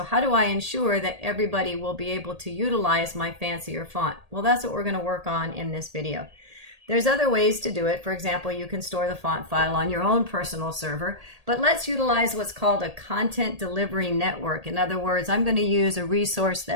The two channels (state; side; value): late; left; 1.8 ms